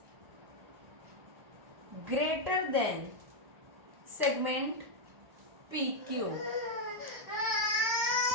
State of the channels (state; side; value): late; left; 1.1 ms